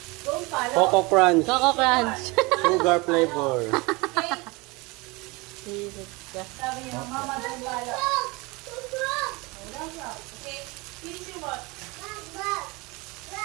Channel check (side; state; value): left; quieter; 25.3 dB